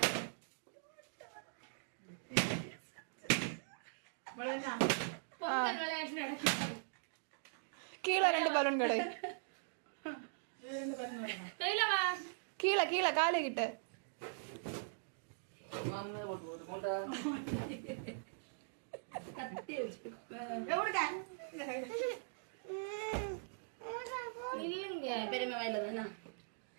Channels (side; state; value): left; silent; digital silence